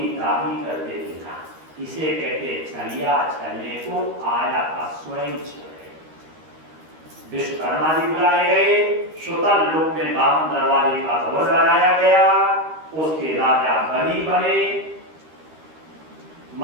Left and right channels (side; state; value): left; late; 13 ms